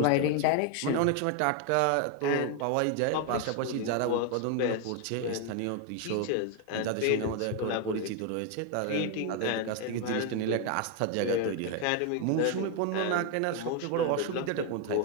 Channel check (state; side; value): different; both; correlation 0.01